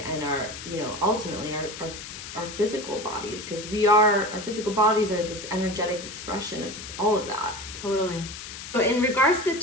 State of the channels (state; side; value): noise; left; hiss, 11 dB below the sound